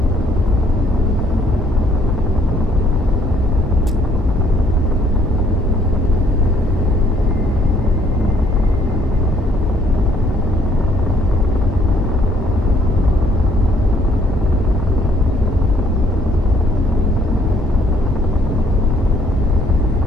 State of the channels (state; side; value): normal; both; correlation 0.65